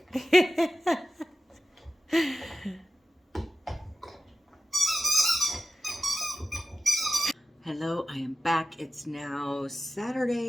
Hello, I am back. It's now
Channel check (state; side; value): normal; both; correlation 0.93